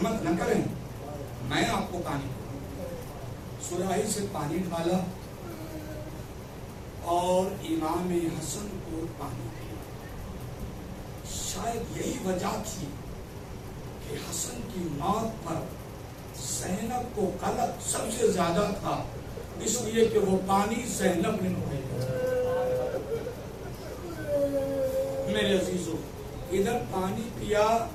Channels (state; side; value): identical; both; correlation 1.00